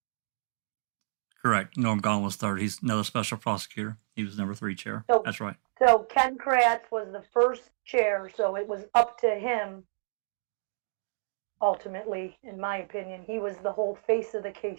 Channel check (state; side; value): silent; left; digital silence